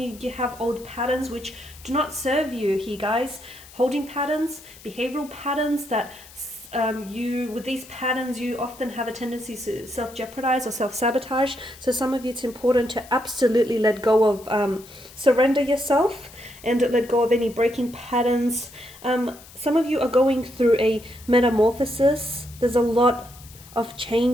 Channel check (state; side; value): noise; left; hiss, 20 dB below the sound